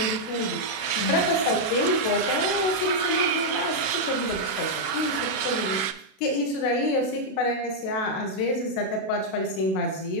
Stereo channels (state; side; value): late; right; 31 ms